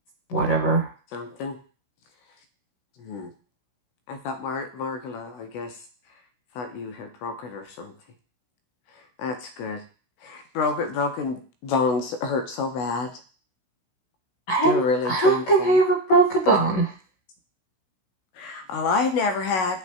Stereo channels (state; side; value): late; right; 16 ms